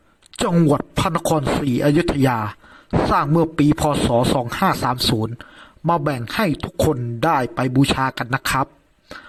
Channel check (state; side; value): identical; both; correlation 1.00